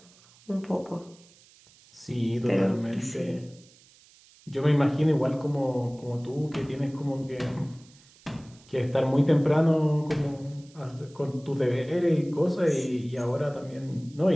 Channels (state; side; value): noise; right; hiss, 27 dB below the sound